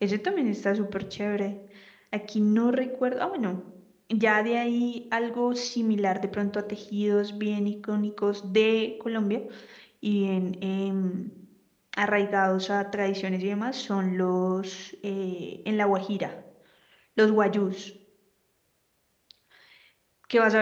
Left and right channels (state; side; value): identical; both; correlation 1.00